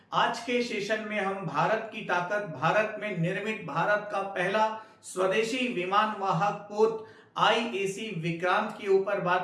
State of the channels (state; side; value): identical; both; correlation 1.00